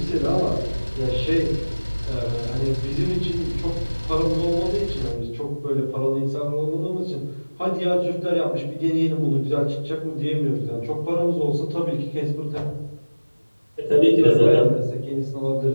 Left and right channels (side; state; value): both; inverted; correlation -1.00